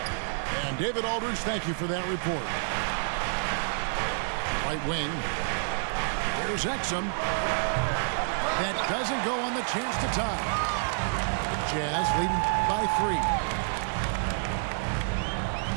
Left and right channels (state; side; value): silent; left; digital silence